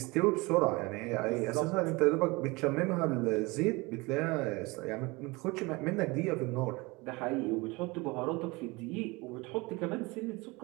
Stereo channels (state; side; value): quieter; left; 24.5 dB